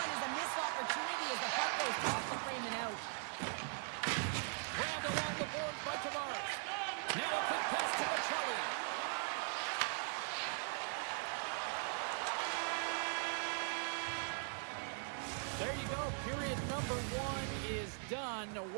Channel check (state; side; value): silent; left; 51 dB below the other